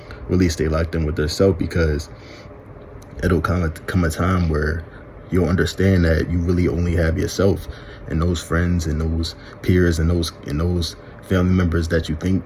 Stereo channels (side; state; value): both; identical; correlation 1.00